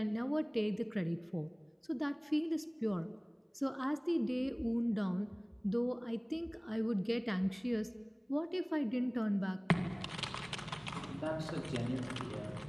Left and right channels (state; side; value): identical; both; correlation 1.00